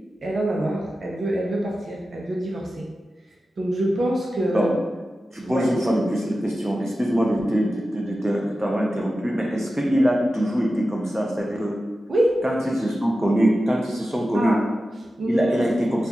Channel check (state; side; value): normal; both; correlation 0.93